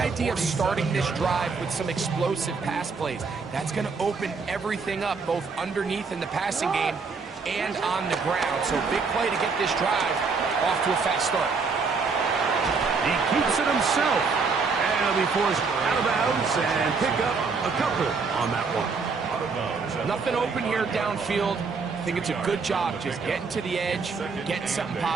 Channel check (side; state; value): left; quieter; 4.8 dB